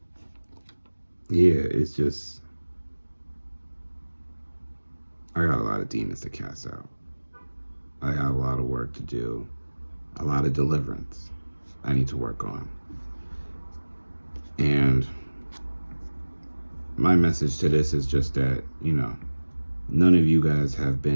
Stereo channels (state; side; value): inverted; both; correlation -1.00